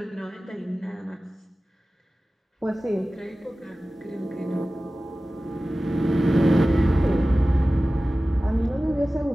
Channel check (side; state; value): both; normal; correlation 0.96